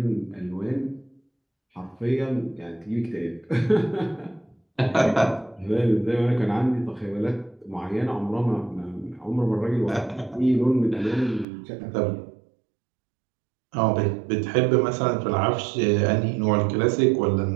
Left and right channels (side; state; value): left; drops out; at 11.5 s